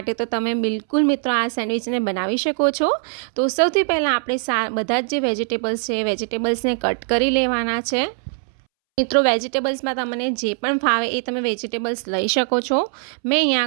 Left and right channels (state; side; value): silent; left; 65 dB below the other